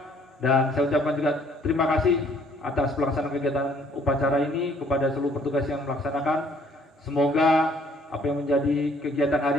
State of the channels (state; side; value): normal; both; correlation 0.61